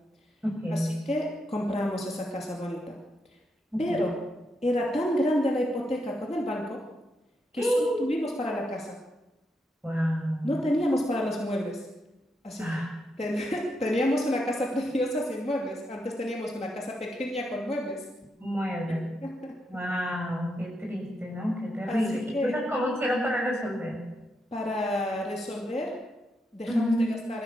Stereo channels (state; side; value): normal; both; correlation 0.82